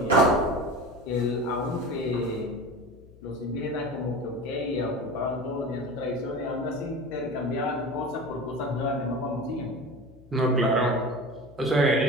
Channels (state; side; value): noise; left; hum, 22 dB below the sound